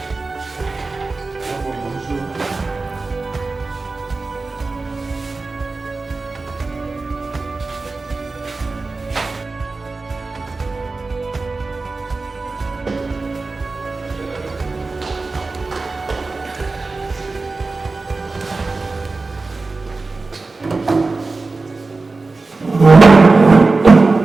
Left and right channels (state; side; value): quieter; left; 3.7 dB